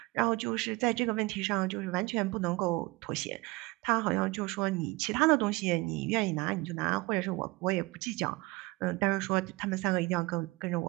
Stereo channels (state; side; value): quieter; left; 23.1 dB